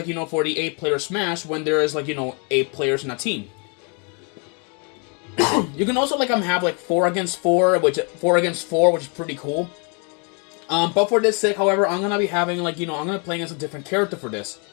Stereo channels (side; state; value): right; quieter; 35.9 dB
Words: you know, for the 8-player Smash when there is, like, you know, 8 players in a team. You can also like have like 4 against 4, which is pretty cool. But for this sake, however, I'm gonna be having, like, you know, I'm gonna be playing as a different character for this.